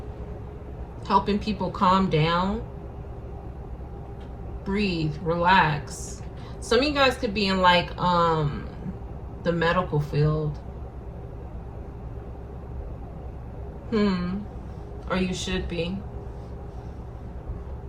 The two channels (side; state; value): both; identical; correlation 1.00